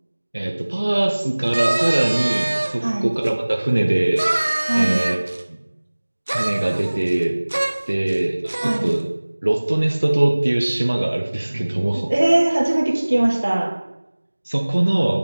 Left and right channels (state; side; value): inverted; both; correlation -1.00